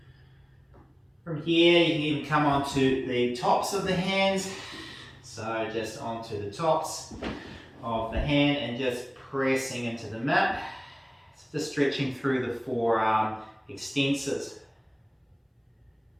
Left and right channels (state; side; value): identical; both; correlation 1.00